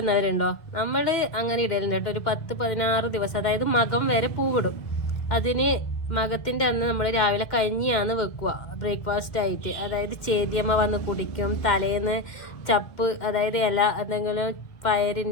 നമ്മൾ അങ്ങനെ ഇടലുണ്ട് കേട്ടോ. ഒരു 10-16 ദിവസം, അതായത് മകം വരെ പൂവിടും. അതിന് മകത്തിന്റെ അന്ന് നമ്മൾ രാവിലെ കഞ്ഞിയാണ് വെക്കുക ബ്രേക്ക്ഫാസ്റ്റ് ആയിട്ട്. അതായത് ചേതിയമ്മ വന്ന് കുടിക്കും. തലേന്ന് ചപ്പ്, അതായത് ഇല എന്തെങ്കിലും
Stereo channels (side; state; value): right; late; 2.1 ms